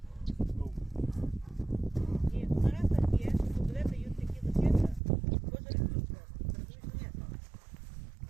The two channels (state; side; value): drops out; left; at 5.0 s